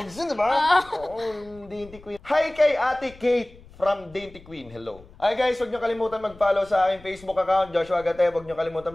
yun, diba? Oo, Dainty Queen. Hi kay Ate Kate from Dainty Queen. Hello. Hi guys, huwag nyo kalimutan mag-follow sa aking Facebook account, Joshua Agatep. Huwag nyo kalimutan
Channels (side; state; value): left; noise; rumble, 22 dB below the sound